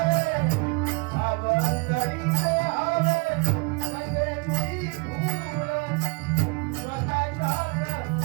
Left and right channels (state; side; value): quieter; left; 30.2 dB